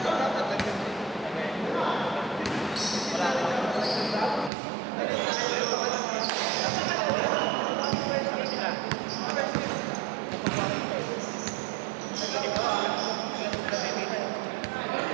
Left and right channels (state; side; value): drops out; left; at 4.5 s